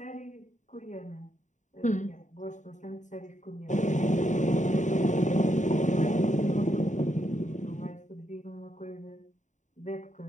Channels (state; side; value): late; right; 0.36 ms